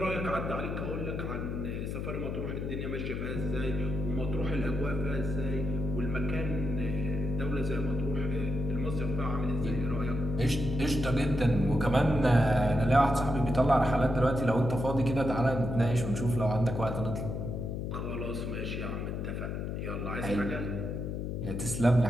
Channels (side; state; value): left; noise; hum, 3 dB below the sound